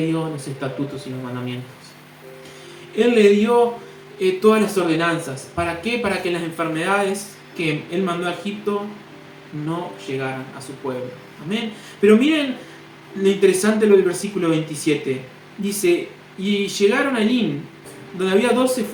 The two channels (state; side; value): identical; both; correlation 1.00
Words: dio los estatutos y los mandamientos. Él le dio todas las ordenanzas. ¿Para qué? Para que las enfermedades que Él mandó a Egipto no llegaran a su pueblo. Amén. Pero miren lo interesante lo del versículo 27. Dice, y llegaron a Lin, donde había 12